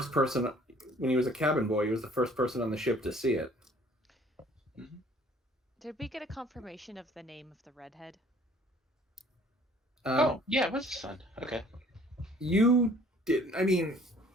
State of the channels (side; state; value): both; normal; correlation 0.56